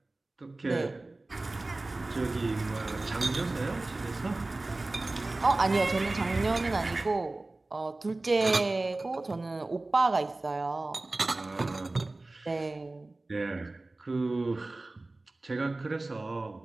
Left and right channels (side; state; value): left; quieter; 3.0 dB